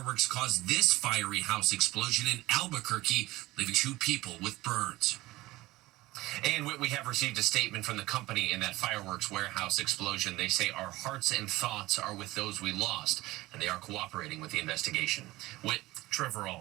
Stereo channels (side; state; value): left; quieter; 18.7 dB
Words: caused this fiery house explosion in Albuquerque, leaving 2 people with burns. And we have received a statement from the company in that fireworks warehouse explosion. They say our hearts and thoughts are with those we lost, and they are cooperating with the investigation. Trevor